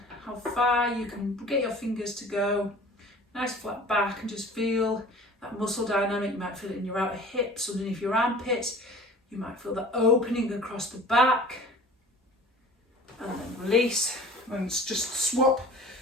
how far you can get your fingers to go. Nice flat back, and just feel that muscle dynamic. You might feel it in your outer hips, underneath your armpits. You might feel that opening across the back. And then release, and just swap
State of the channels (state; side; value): normal; both; correlation 0.44